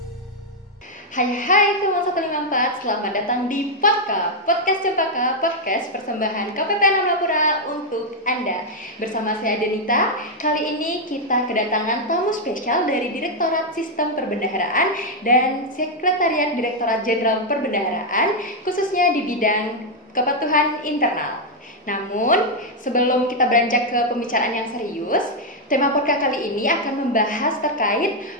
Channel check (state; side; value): normal; both; correlation 0.00